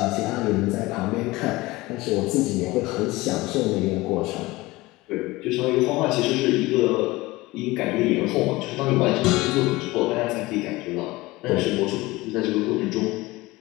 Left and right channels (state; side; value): quieter; right; 20.4 dB